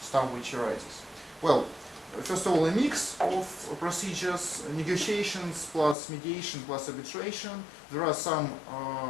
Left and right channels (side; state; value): right; drops out; at 6.0 s